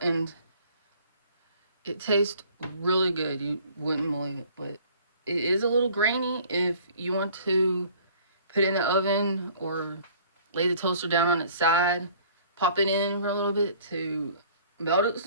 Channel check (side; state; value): both; inverted; correlation -0.53